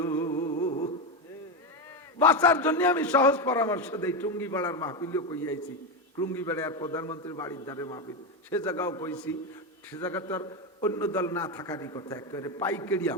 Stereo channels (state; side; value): normal; both; correlation 0.11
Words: বাঁচার জন্য আমি সহজ পরামর্শ দেই। টুঙ্গিপাড়ার মাহফিলও কইয়াছি, টুঙ্গিপাড়ার প্রধানমন্ত্রীর বাড়ির ধারে মাহফিল, সে জায়গাও কইছি। সে জায়গা তো আর অন্য দল না থাকারই কথা, একেবারে পাইকারি